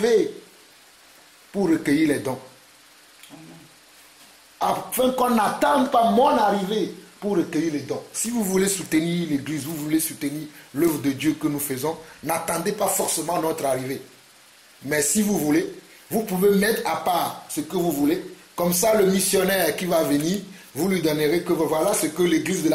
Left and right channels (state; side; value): identical; both; correlation 1.00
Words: pour recueillir les dons. Afin qu'on n'attende pas mon arrivée pour recueillir les dons. Si vous voulez soutenir l'Église, vous voulez soutenir l'œuvre de Dieu que nous faisons, n'attendez pas forcément notre arrivée. Mais si vous voulez, vous pouvez mettre à part ce que vous voulez. Comme ça, le missionnaire qui va venir, vous lui donnerez que voilà ce que l'Église de